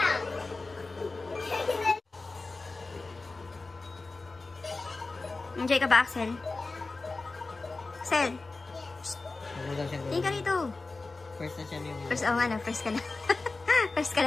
Enjoy ka ba, Axel? Axel, Huwag mo daw siyang tingin ka gawin. rito. First na siya yung... First, oh nga na, first ka na. First ka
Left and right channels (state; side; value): quieter; right; 3.6 dB